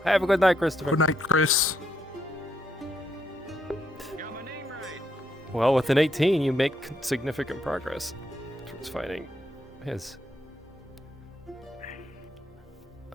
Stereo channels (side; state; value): both; normal; correlation 0.77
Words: Have a good night, Christopher. Good night, Chris. Got my name right. Well, with an 18, you make significant progress towards finding his.